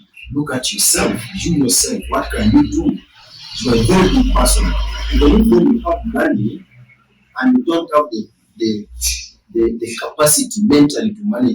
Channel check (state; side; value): identical; both; correlation 1.00